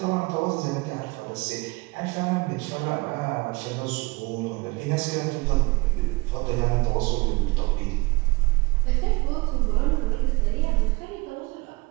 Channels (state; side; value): quieter; left; 24.8 dB